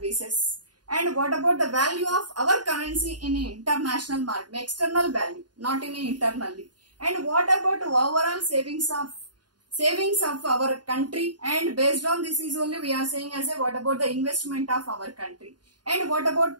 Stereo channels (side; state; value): left; late; 0.70 ms